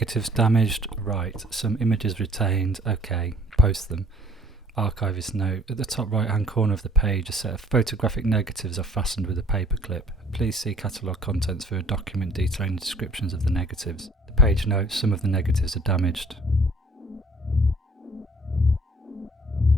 damaged, right. Some images retained, okay. Post them. Archivist note, at the top right hand corner of the page a set of photographic negatives are fastened with a paper clip. Please see catalogue contents for a document detailing descriptions of the negatives. The page notes some of the negatives are damaged.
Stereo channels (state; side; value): normal; both; correlation 0.58